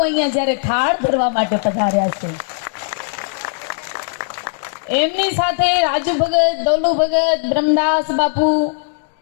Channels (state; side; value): silent; right; digital silence